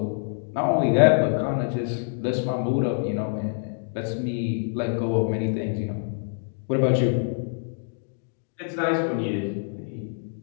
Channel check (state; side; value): silent; right; digital silence